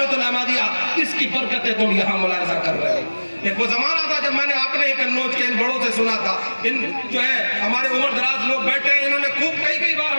الاحمدیہ، اس کی برکتیں تم یہاں ملاحظہ کر رہے ہو. ایک وہ زمانہ تھا جب میں نے اپنے قنوج کے ان بڑوں سے سنا تھا، ان جو ہے ہمارے عمر دراز لوگ بیٹھے ہیں، انہوں نے خوب کئی بار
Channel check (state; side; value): inverted; both; correlation -1.00